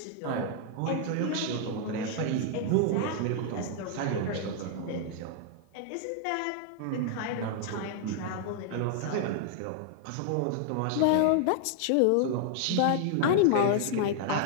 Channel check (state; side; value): different; both; correlation 0.00